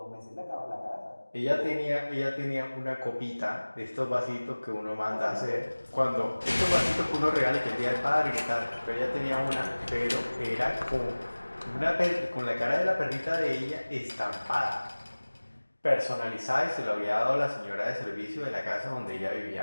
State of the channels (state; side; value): inverted; both; correlation -1.00